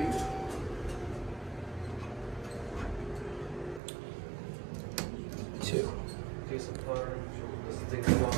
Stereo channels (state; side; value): drops out; left; at 3.8 s